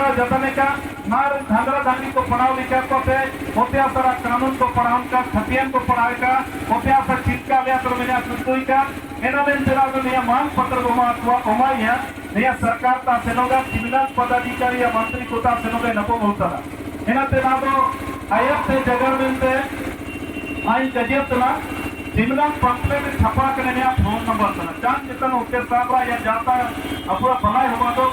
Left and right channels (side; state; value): both; identical; correlation 1.00